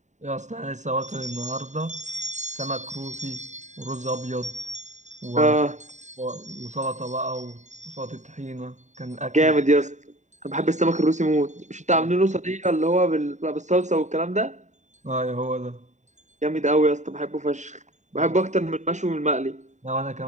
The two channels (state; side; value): late; left; 0.34 ms